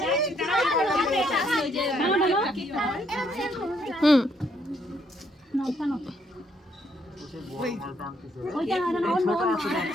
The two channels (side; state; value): both; normal; correlation 0.71